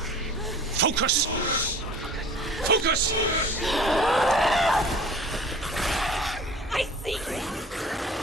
Focus! Focus! I see you!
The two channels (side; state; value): both; normal; correlation 0.45